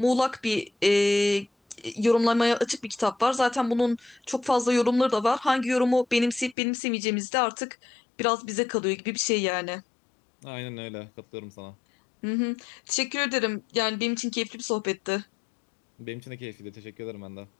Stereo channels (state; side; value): drops out; right; at 6.6 s